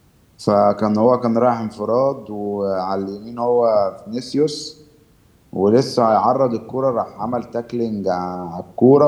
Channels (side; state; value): both; identical; correlation 1.00